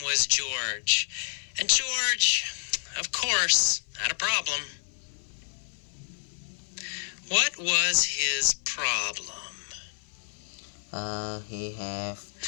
was George. And George, of course, had a problem. What was his problem? He have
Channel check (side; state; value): right; silent; 57 dB below the other